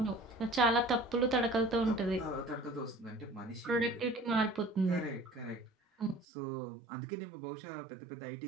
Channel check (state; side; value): drops out; left; at 6.2 s